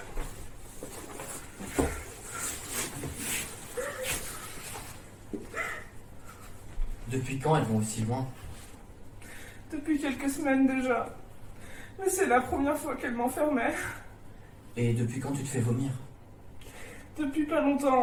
Depuis quand elles vont aussi loin? Depuis quelques semaines déjà. Mais c'est la première fois qu'elle m'enfermait. Et depuis quand tu te fais vomir? Depuis pas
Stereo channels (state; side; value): identical; both; correlation 1.00